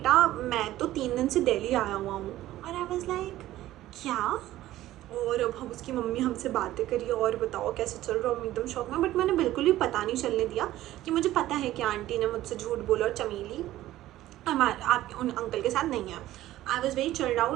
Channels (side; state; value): left; quieter; 14.8 dB